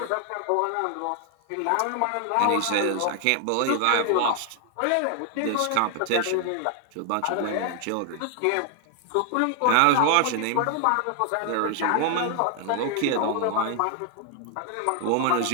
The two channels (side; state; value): both; different; correlation 0.00